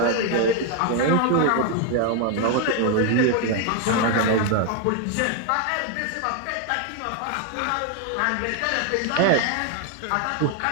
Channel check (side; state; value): both; different; correlation 0.01